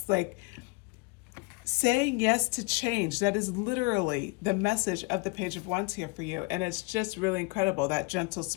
like saying yes to change. That is literally the message of the Page of Wands here for you. And it's just really incredible, that gentle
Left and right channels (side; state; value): right; quieter; 27.5 dB